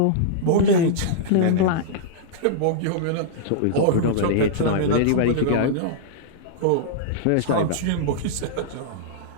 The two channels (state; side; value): different; both; correlation -0.02